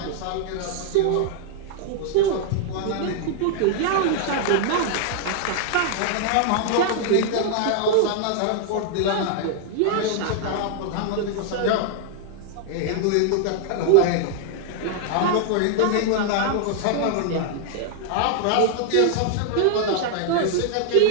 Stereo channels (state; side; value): different; both; correlation -0.01